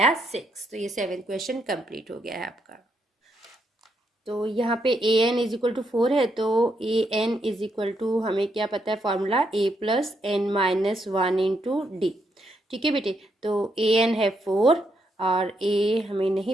6। तो ये 7th क्वेश्चन कंप्लीट हो गया है आपका। तो यहाँ पे AN इज इक्वल टू 4 है, तो AN इज इक्वल टू हमें क्या पता है formula, A plus n minus one into d. ठीक है बेटे, तो AN है 4 और A हमें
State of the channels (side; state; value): both; normal; correlation 0.78